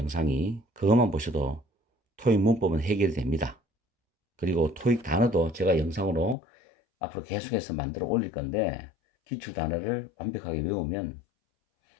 그것만 보셔도 토익 문법은 해결이 됩니다. 그리고 토익 단어도 제가 영상으로 앞으로 계속해서 만들어 올릴 건데 기출 단어를 완벽하게 외우면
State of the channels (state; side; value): drops out; right; at 6.4 s